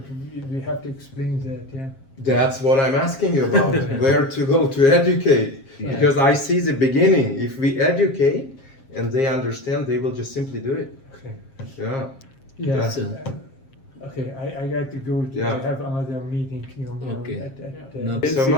we have to explain that, yeah. that's what I'm asking you about, where to go to educate. Yeah. Because I see the beginning. If we educate and they understand, they will just simply do it. Okay. Yeah. Yeah. That's Okay, I got to go. Yeah. I have another meeting, Okay. at No, Thank you so basic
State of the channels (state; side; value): late; right; 7.5 ms